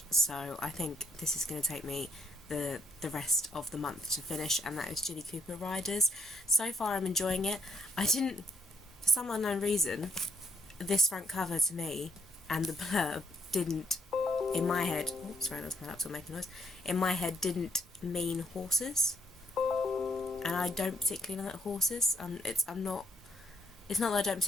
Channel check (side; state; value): both; normal; correlation 0.71